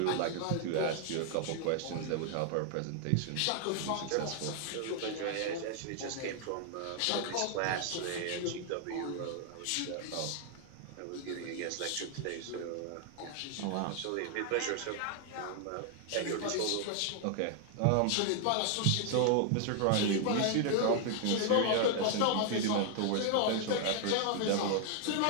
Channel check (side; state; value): both; different; correlation 0.00